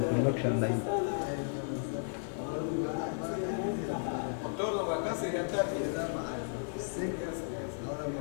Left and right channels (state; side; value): silent; right; digital silence